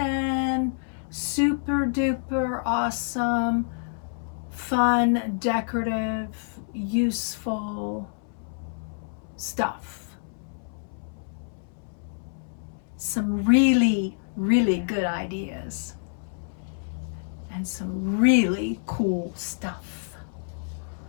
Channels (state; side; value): silent; right; 60 dB below the other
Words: super duper awesome, fun, decorative, useful stuff. Some really, really good ideas. And some really cool stuff.